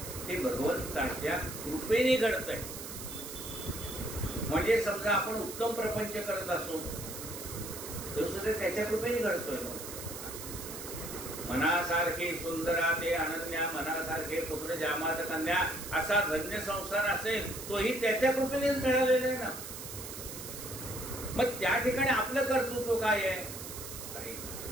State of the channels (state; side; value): noise; right; hiss, 9 dB below the sound